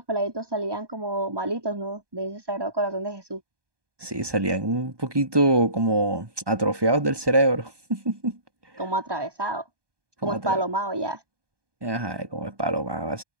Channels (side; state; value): left; late; 1.2 ms